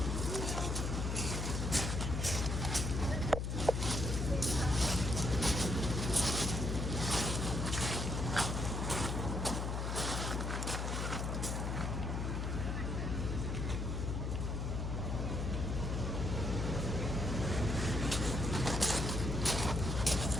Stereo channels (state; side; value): noise; left; hum, 1 dB below the sound